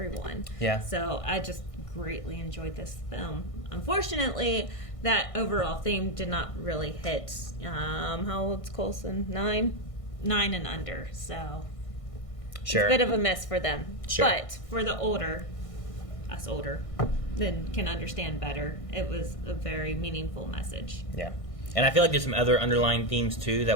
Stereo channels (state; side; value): late; right; 1.6 ms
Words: Yeah. So I just greatly enjoyed this film. Unfortunately, that overall theme did not really hit. How old's Coulson? 9 and under. So sure, it's a bit of a miss for them. Sure. But for the older, then can understand better. It was a very meaningful message. Yeah. And I feel like there's some other underlying themes too